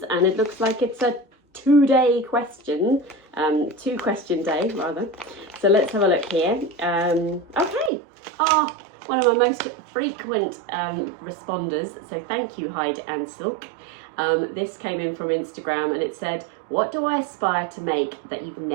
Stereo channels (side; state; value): left; drops out; at 7.9 s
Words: and it looks like it's a 2-day question, 2-question day rather. So let's have a look here. Okay, one of my most frequent responders, so thank you Hyde and Silk. This came in from Instagram and it said, what do I aspire to make that you've